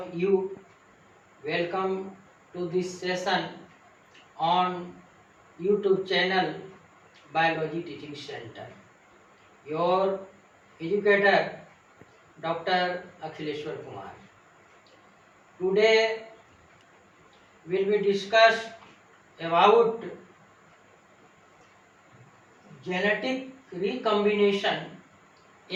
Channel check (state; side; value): identical; both; correlation 1.00